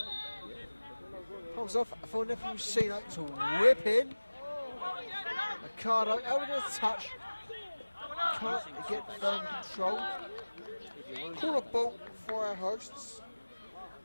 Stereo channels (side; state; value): both; inverted; correlation -1.00